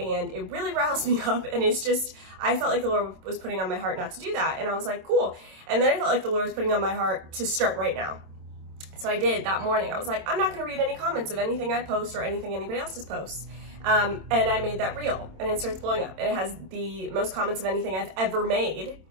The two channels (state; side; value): late; left; 27 ms